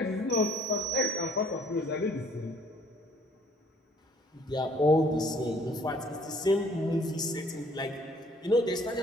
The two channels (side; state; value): both; normal; correlation 0.59